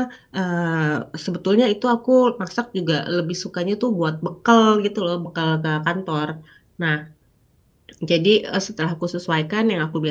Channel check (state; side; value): identical; both; correlation 1.00